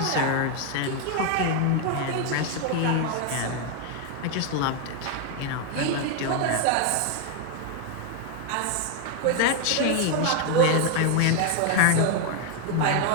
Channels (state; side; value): different; both; correlation 0.01